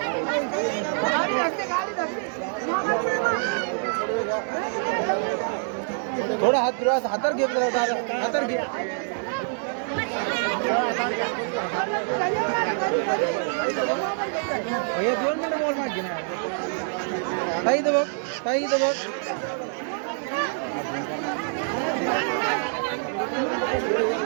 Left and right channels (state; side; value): silent; left; 61 dB below the other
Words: थोडा हात फिरवा हातार घे हातार घे भैया 2 मिनिट मोबाईल मागे ना ताई इथं बघ